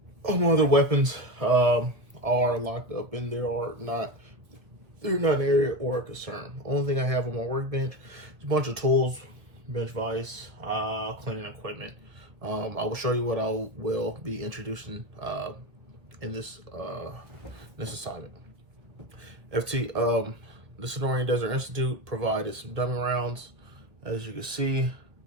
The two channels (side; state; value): left; late; 1.4 ms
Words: All my other weapons are locked up and they're not an area or a concern. Only thing I have on my workbench is a bunch of tools, bench vise, cleaning equipment. I will show you what I will be introducing in this assignment. The Sonoran Desert Institute provided some dummy rounds. As you can see,